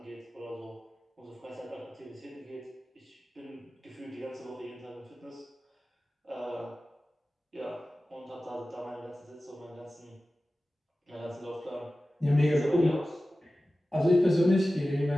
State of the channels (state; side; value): normal; both; correlation 0.95